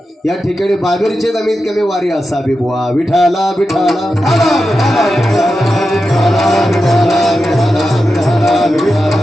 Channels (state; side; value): normal; both; correlation 0.90